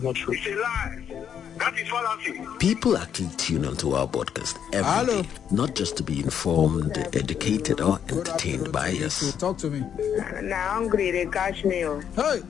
not true. It's a lie. That is fallacy. People actually tune onto our podcast every day, not just to be informed, educated, or entertained by us. Talk to me. Now hungry, they catch me. Hey,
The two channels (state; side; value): quieter; right; 8.6 dB